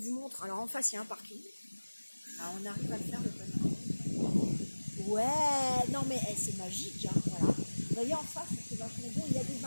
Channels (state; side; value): inverted; both; correlation -1.00